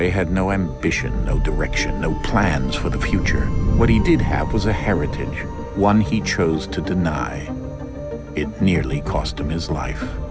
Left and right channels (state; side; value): identical; both; correlation 1.00